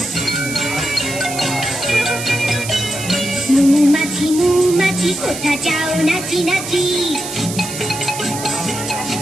মৌমাছি মৌমাছি কোথা যাও নাচি নাচি।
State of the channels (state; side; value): noise; right; hiss, 8 dB below the sound